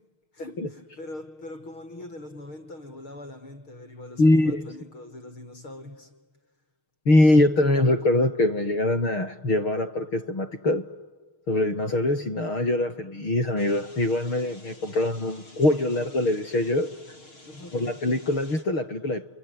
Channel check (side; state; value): right; late; 6.5 ms